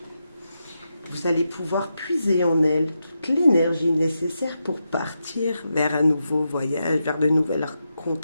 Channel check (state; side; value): inverted; both; correlation -0.87